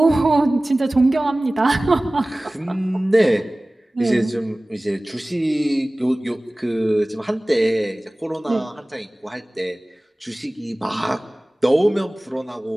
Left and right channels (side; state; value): both; normal; correlation 0.98